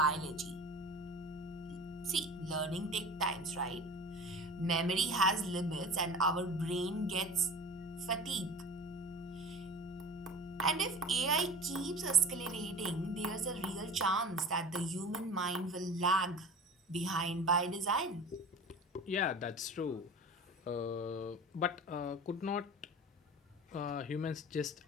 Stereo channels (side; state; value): both; normal; correlation 0.37